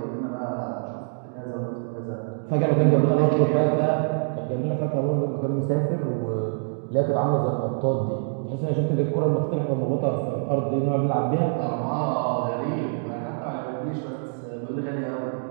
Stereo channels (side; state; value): left; silent; digital silence